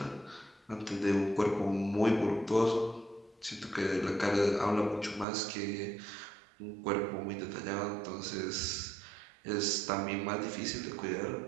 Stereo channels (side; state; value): left; drops out; at 5.2 s